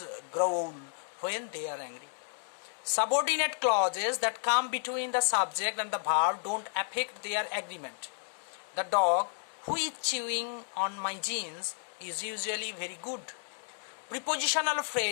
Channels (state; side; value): silent; right; digital silence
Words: growl when they are angry. Subordinate clauses that come between the subject and the verb don't affect their agreement. The dog who is chewing on my jeans is usually very good. Prepositional